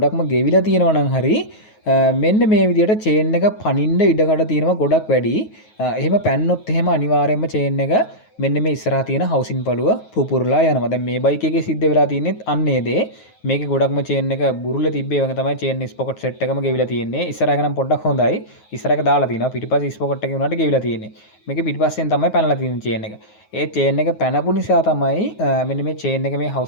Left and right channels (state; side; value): late; right; 9.4 ms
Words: ගෙවිලා තියෙනවා නම් හරි මෙන්න මේ විදිහට චේන් එක පනින්න ඉඩකඩ තියෙනවා ගොඩක් වැඩි. එහෙම පැන්නොත් එහෙම අනිවාර්යයෙන්ම චේන් එක මෙන්න මේ ඉස්සරහා තියෙන හවුසින් පළුව පුපුරලා යනවා. දැන් මේ බයික් එකේ සිද්ධ වෙලා තියෙන්නේ අන්නේ දේ. මේකේ ගොඩක්ම චේන් එක බුරුල්ල තිබ්බේ වගේ තමයි චේන් ස්පොකට් සෙට් එකම ගෙවිලා තියෙන්නේ. ඉස්සරහ එක නම් පොඩ්ඩක් හොඳයි. ඉස්සරහ එක දාලා තිනවා. පිටිපස්සේ ස්පොකට් එකේ උනාට ගෙවිලා තියෙන්නේ. මේකේ පිටිපස්සෙන් තමයි පැනලා තියෙන්නේ චේන් එක. ඒ චේන් එක පැනපු නිසා තමයි මෙන්න මේ චේන් එක මේ